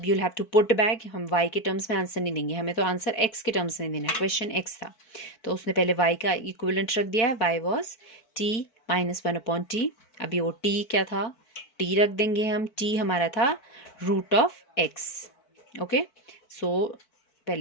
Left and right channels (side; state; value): right; late; 4.5 ms